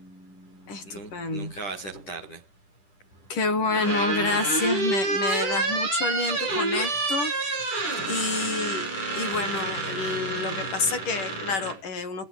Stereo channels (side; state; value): right; late; 10 ms